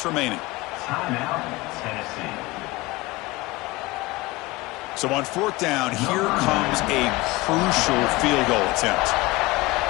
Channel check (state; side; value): quieter; right; 21.2 dB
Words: remaining. Timeout, Tennessee. So on fourth down, here comes a crucial field goal attempt.